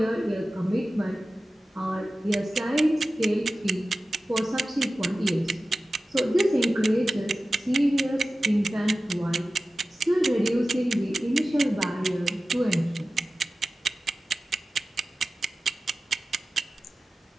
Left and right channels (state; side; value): normal; both; correlation 0.95